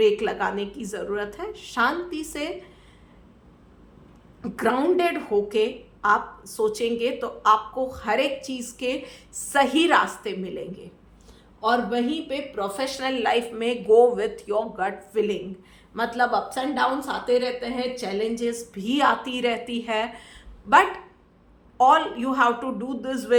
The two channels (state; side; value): identical; both; correlation 1.00